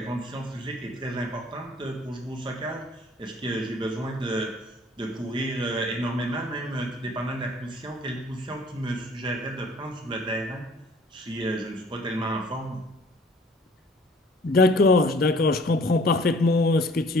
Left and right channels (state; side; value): normal; both; correlation 0.54